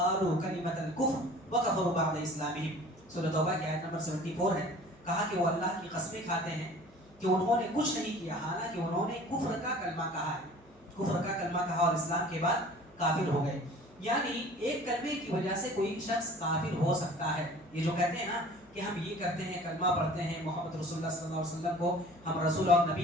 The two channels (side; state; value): left; noise; hum, 28 dB below the sound